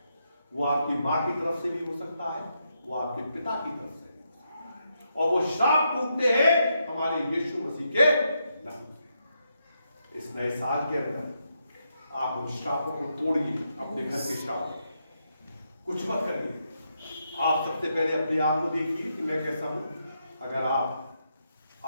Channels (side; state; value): both; inverted; correlation -0.81